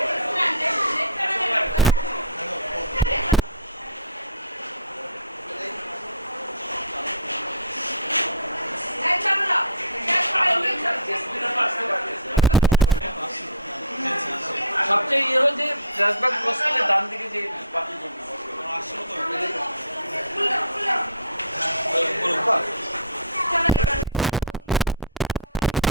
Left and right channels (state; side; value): inverted; both; correlation -0.39